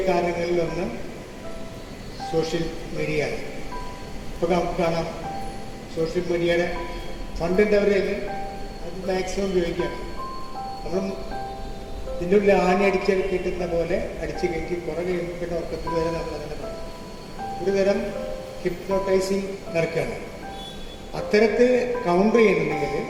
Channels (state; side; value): identical; both; correlation 1.00